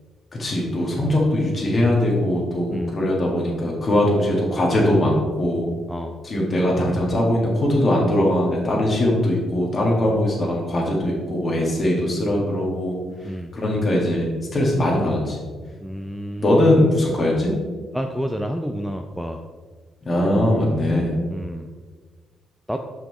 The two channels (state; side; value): normal; both; correlation 0.82